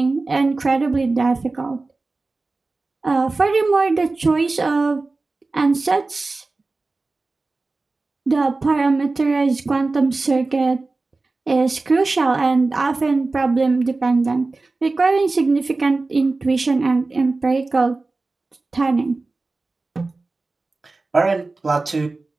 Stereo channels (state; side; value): quieter; left; 3.5 dB